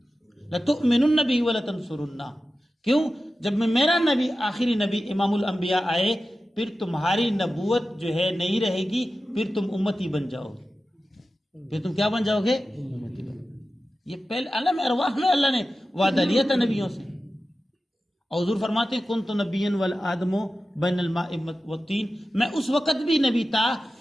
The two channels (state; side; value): normal; both; correlation 0.94